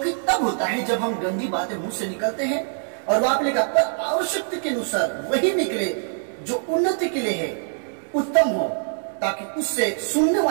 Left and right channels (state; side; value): silent; left; digital silence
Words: तब होता है जब हम गंदी बातें मुंह से निकलते हैं और वहां पे लिखा पर आवश्यकता के अनुसार वही निकले जो उन्नति के लिए है, उत्तम हो, ताकि उससे सुनने